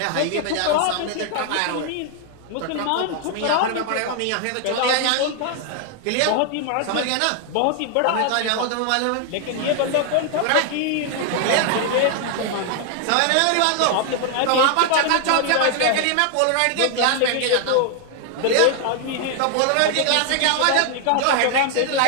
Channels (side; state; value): both; different; correlation 0.00